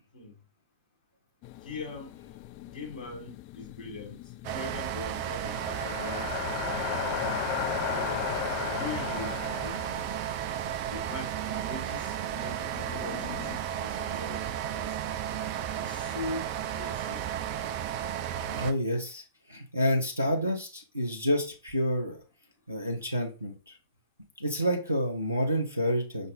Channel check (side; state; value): both; inverted; correlation -0.40